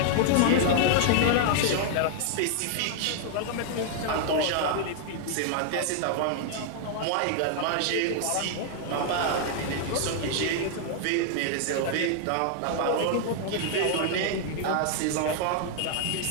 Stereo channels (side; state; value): both; different; correlation 0.00